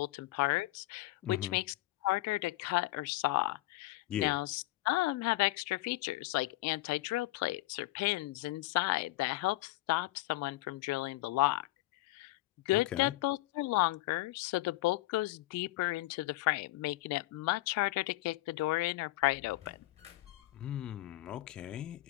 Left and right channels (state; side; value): quieter; right; 18.5 dB